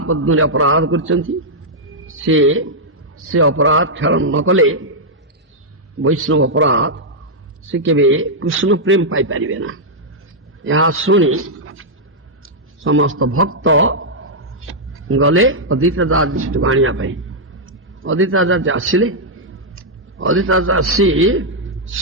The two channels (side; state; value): both; normal; correlation -0.05